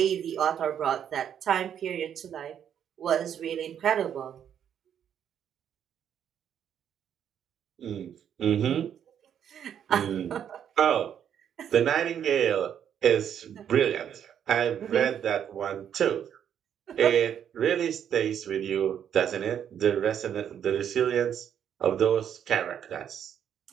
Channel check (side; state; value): left; quieter; 9.0 dB